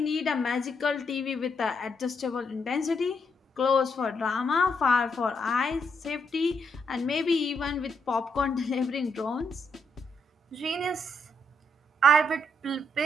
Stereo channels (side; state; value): both; normal; correlation 0.77